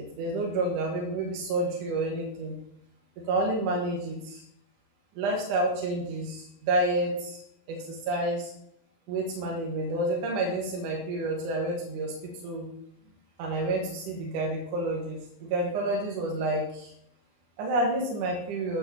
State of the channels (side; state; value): left; late; 10 ms